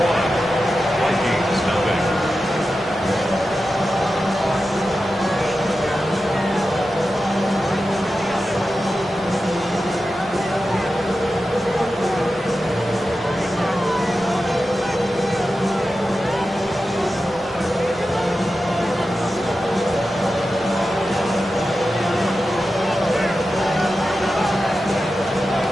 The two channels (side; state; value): both; normal; correlation 0.92